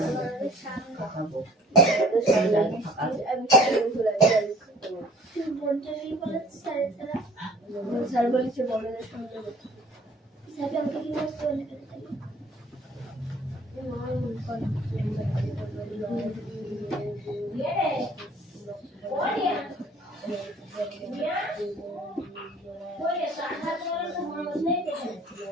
স্যার বলেছে বড়দের সঙ্গে স্যারকে আমাকে কি বলতে বলে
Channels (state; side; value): normal; both; correlation 0.52